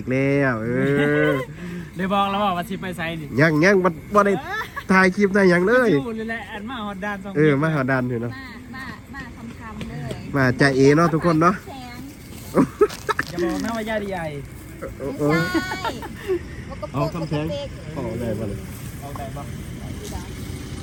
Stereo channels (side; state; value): both; identical; correlation 1.00